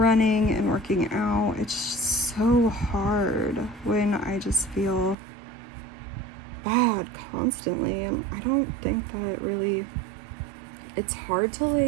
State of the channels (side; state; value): left; drops out; at 5.2 s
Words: and working out. It's so hard when I just feel bad constantly, and I don't think that really, it's hard to